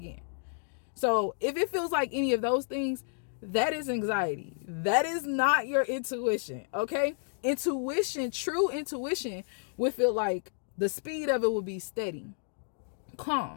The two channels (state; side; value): silent; right; digital silence